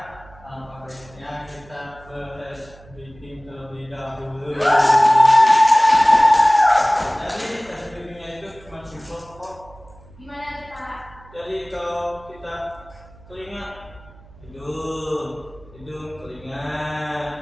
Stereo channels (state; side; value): noise; right; hum, 23 dB below the sound